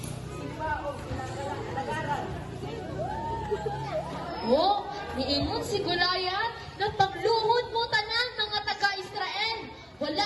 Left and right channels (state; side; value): identical; both; correlation 1.00